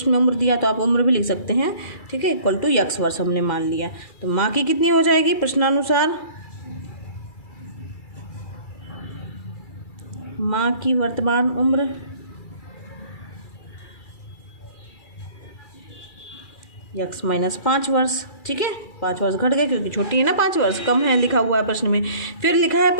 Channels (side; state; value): right; late; 2.3 ms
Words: में उम्र दिया तो आप उम्र भी लिख सकते हैं। ठीक है, इक्वल टू x वर्ष हमने मान लिया। तो माँ की कितनी हो जाएगी प्रश्नानुसार, माँ की वर्तमान उम्र x माइनस 5 वर्ष। ठीक है, 5 वर्ष घट गए क्योंकि छोटी है ना, 5 वर्ष कम है लिखा हुआ है प्रश्न में। फिर लिखा है